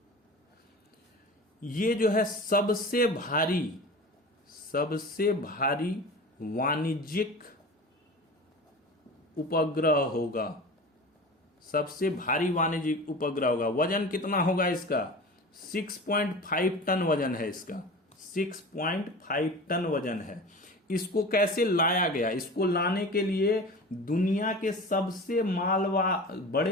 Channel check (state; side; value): normal; both; correlation 0.35